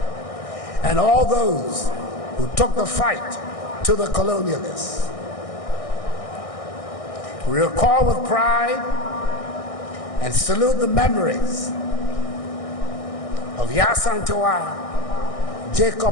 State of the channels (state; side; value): late; right; 1.6 ms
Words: And all those who took the fight to the colonialists. We recall with pride and salute the memories of Yasantua,